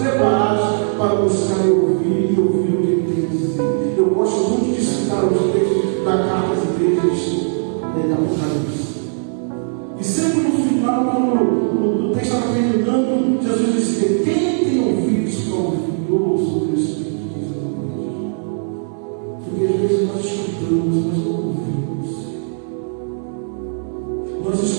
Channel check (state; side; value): silent; left; 67 dB below the other